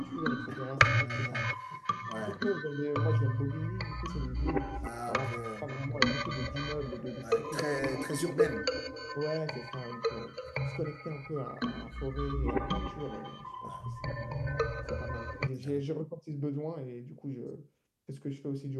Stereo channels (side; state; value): both; identical; correlation 1.00